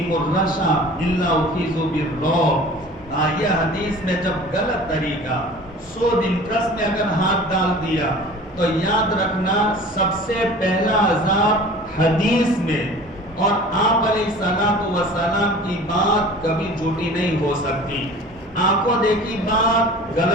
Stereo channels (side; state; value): both; normal; correlation 0.43